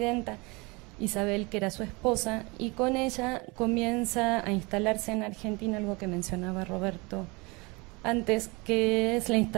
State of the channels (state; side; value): quieter; left; 26.6 dB